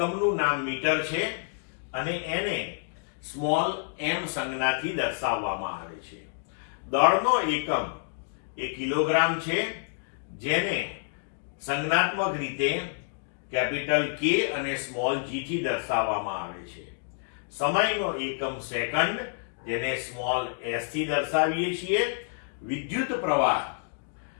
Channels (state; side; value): silent; right; digital silence